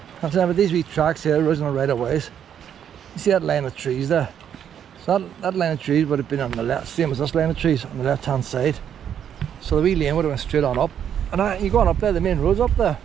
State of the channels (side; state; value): left; quieter; 9.1 dB